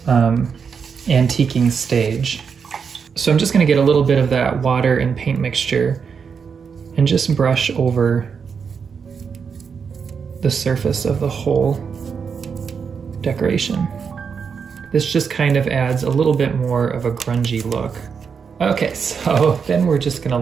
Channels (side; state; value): left; quieter; 6.2 dB